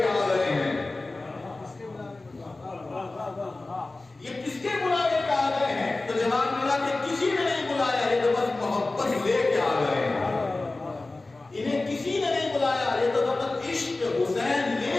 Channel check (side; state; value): right; quieter; 3.2 dB